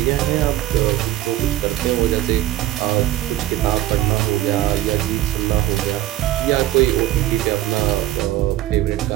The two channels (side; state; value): left; quieter; 14.6 dB